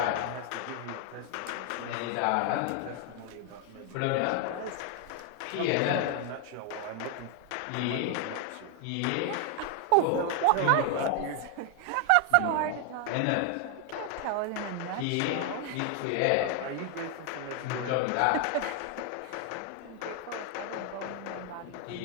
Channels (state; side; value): different; both; correlation 0.00